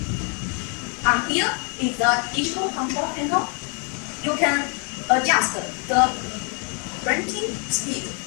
And here is the digital control panel. You can adjust the printing speed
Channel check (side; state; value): right; quieter; 37.3 dB